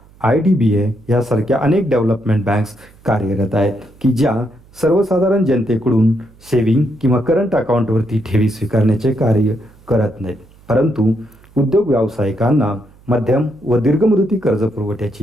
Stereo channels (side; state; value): right; noise; hum, 27 dB below the sound